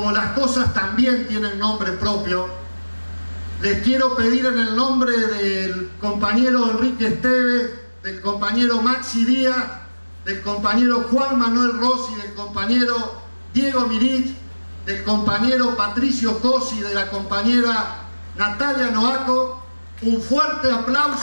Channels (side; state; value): both; inverted; correlation -1.00